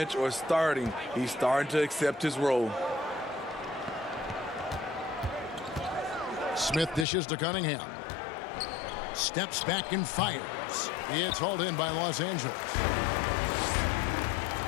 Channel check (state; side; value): drops out; right; at 7.1 s